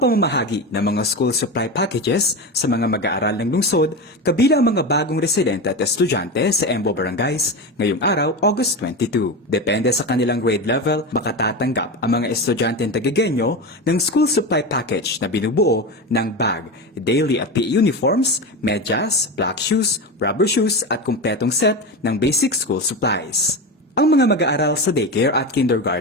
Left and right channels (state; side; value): normal; both; correlation 0.21